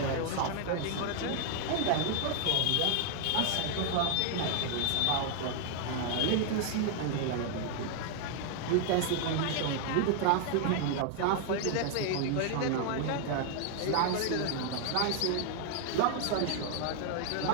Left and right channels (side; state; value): both; different; correlation 0.00